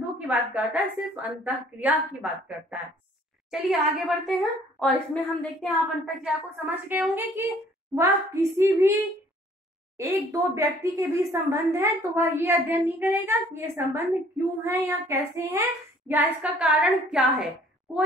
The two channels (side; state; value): both; normal; correlation 0.57